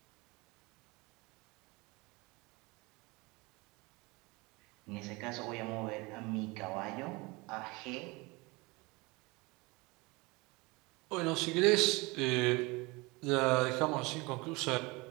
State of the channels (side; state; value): left; quieter; 24.9 dB